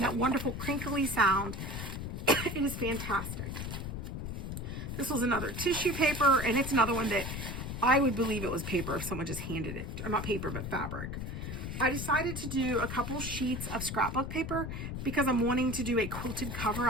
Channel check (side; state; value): left; noise; rumble, 5 dB below the sound